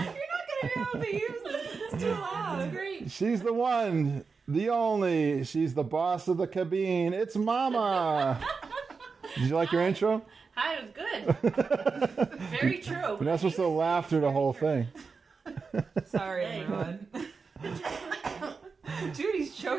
going to be able to use this. It's too loud. It's great. She's the one, the only. She's the boss of the cabine. It's Momma. Did you like your intro? Hi, it was good. Very true. You're not supposed to laugh through the whole thing. Sorry, everyone. Judy's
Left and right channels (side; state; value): left; quieter; 4.9 dB